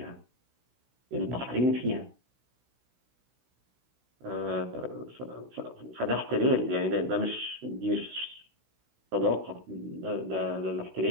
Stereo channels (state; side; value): late; left; 16 ms